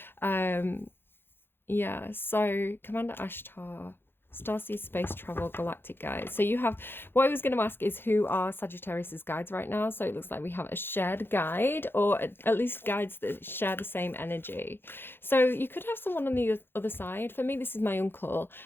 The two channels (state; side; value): late; right; 0.10 ms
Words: Yeah. So Commander Ashtar, starseed, space travel, galactic guides. So you have, what I was going to ask is who are Sagittarius's guides right now? So it looks like we have a shared guide, or at least guides that share the same energy. So you could have someone on the other side. For me, this is my uncle,